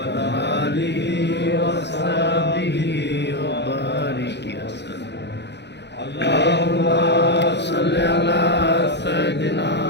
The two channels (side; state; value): right; late; 0.50 ms